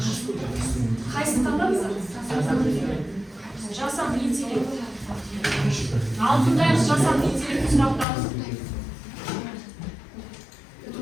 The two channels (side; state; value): right; drops out; at 8.1 s